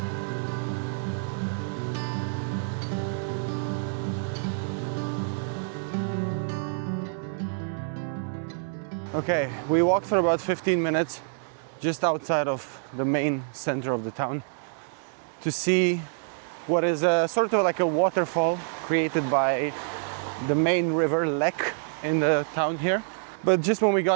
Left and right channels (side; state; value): left; silent; 60 dB below the other